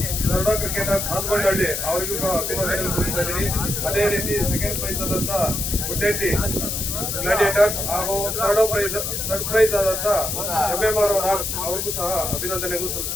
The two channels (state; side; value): noise; left; hiss, 2 dB below the sound